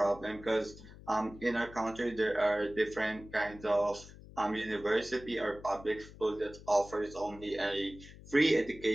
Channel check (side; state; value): left; noise; hum, 18 dB below the sound